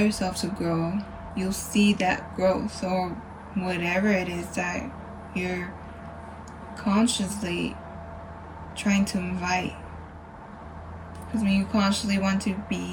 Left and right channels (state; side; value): identical; both; correlation 1.00